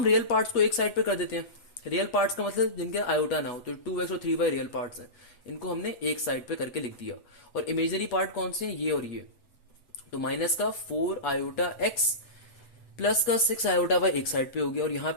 रियल पार्ट्स को एक साइड पे कर देते हैं। रियल पार्ट्स का मतलब जिनके आयोटा ना हो, तो 2x और 3y रियल पार्ट्स हैं, इनको हमने एक साइड पे करके लिख दिया। और इमेजनरी पार्ट कौन से हैं, ये और ये। तो माइनस का 4 आयोटा x प्लस का 6 आयोटा वाई एक साइड पे हो गया, और यहाँ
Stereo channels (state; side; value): late; right; 8.0 ms